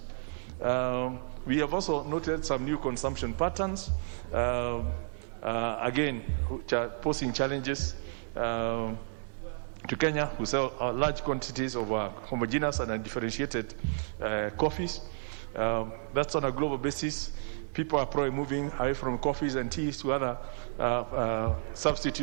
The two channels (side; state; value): left; silent; 56 dB below the other